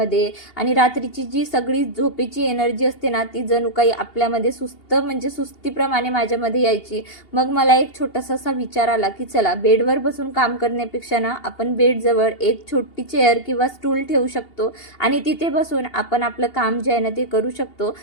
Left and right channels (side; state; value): right; late; 2.8 ms